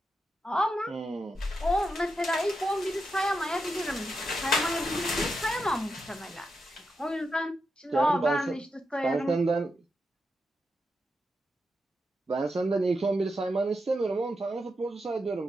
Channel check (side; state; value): both; normal; correlation 0.86